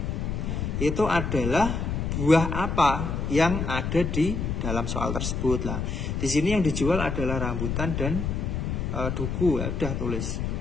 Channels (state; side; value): noise; left; rumble, 2 dB below the sound